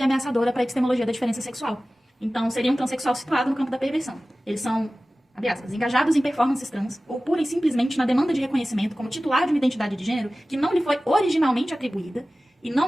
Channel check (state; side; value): normal; both; correlation 0.97